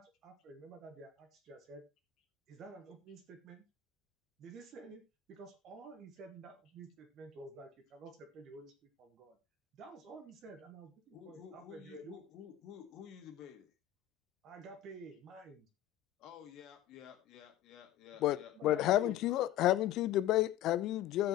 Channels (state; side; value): quieter; right; 12.1 dB